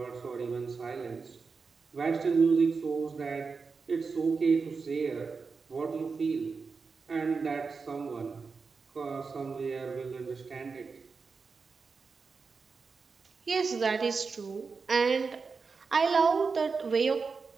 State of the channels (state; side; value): quieter; left; 4.8 dB